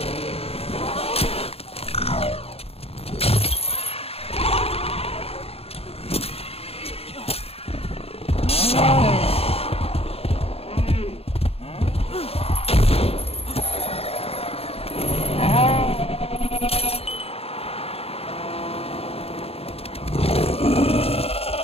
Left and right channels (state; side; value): late; right; 0.29 ms